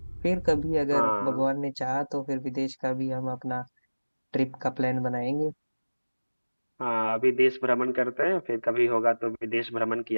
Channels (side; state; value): both; inverted; correlation -1.00